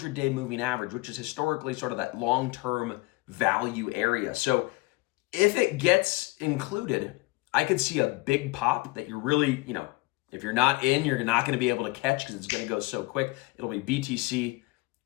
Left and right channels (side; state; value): right; quieter; 23.1 dB